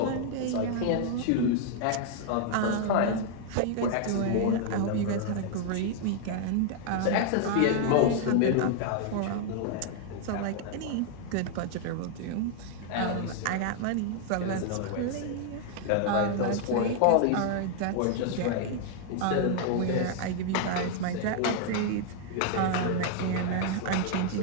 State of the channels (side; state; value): both; different; correlation 0.00